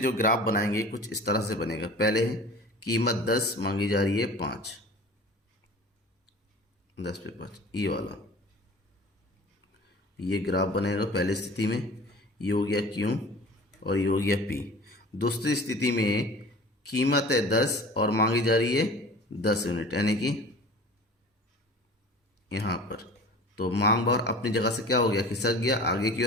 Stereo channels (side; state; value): both; normal; correlation 0.41